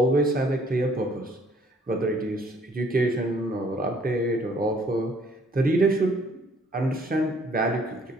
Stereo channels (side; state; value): both; normal; correlation 0.61